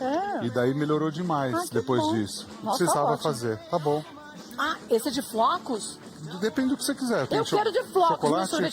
E daí melhorou demais Ah, que depois bom. disso. Nossa, Precisava ótimo. fazer. Tá bom. Ah, esse é de flocos? Depende do que você quiser. Tem Eu quero de flocos, chocolate meu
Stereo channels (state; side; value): identical; both; correlation 1.00